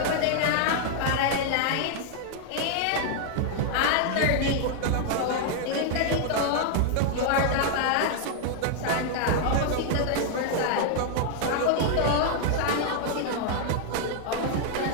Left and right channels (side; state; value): both; different; correlation 0.00